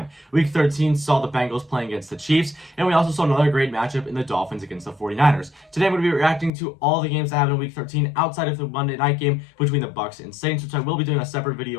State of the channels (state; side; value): drops out; right; at 6.5 s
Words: Week 13 saw the Bengals playing against the Chiefs, and we also saw another great matchup in the Dolphins against the 49ers. Today I'm going to be reacting to all the games that happened in Week 13 outside of the Monday night game between the Bucs and Saints, which I will be doing a separate